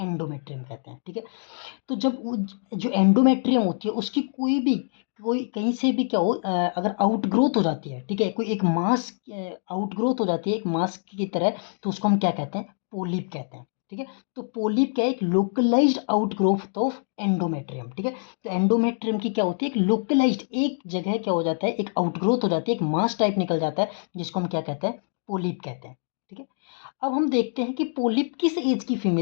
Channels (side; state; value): right; silent; 62 dB below the other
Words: कहते हैं। ठीक है। तो जब वो जो एंडोमेट्रियम होती है उसकी कोई कहीं से भी क्या हो, अगर आउटग्रोथ हो जाती है, ठीक है, कोई एक मास आउटग्रोथ हो जाती है एक मास की तरह, तो उसको हम क्या कहते हैं? पोलिप कहते हैं। ठीक है। तो पोलिप क्या है? एक लोकलाइज्ड आउटग्रोथ ऑफ एंडोमेट्रियम। ठीक है। तो एंडोमेट्रियम की क्या होती है? एक लोकलाइज्ड एक जगह क्या हो जाता है, एक आउटग्रोथ हो जाती है, एक मास टाइप निकल जाता है, जिसको हम क्या कहते हैं? पोलिप कहते हैं। ठीक है। अब हम देखते हैं कि पोलिप किस एज की